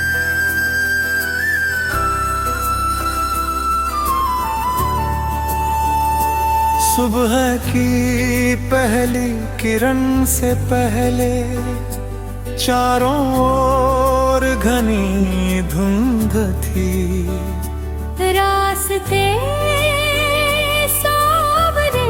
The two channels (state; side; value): identical; both; correlation 1.00